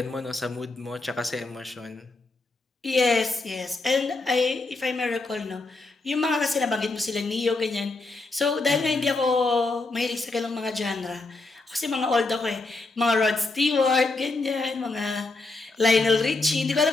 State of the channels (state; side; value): quieter; right; 3.4 dB